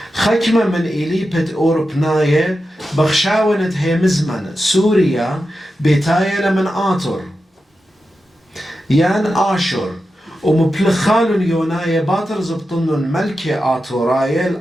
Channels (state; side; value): normal; both; correlation 0.90